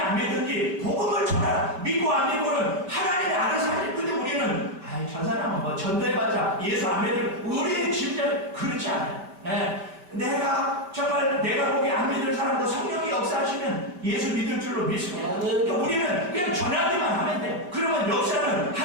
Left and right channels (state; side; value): late; left; 5.2 ms